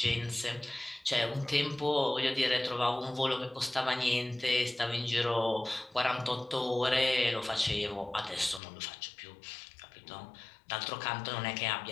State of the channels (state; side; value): drops out; right; at 8.6 s